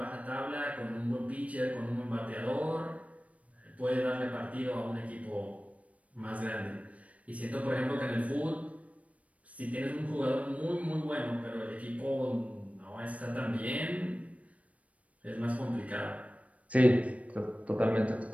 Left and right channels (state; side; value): late; left; 0.066 ms